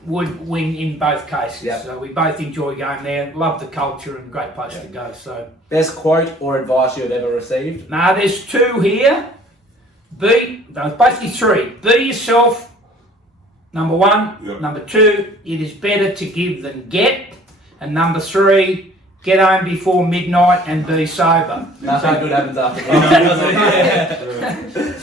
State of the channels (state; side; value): normal; both; correlation 0.53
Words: would win in both cases. Yep. So we both enjoy going there. Love the culture and great place to go. So Best quote or advice you've ever received? there's two here. Basically three. Be yourself. Number one. Yep. Number two, it is better to give than get. And number three, get home before midnight and be sober. Nothing good happens after that.